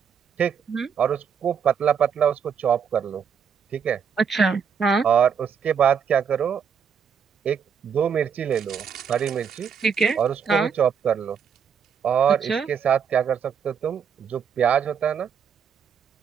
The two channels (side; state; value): left; quieter; 7.1 dB